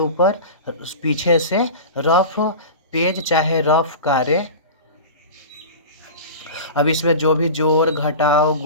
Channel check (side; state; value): both; inverted; correlation -0.32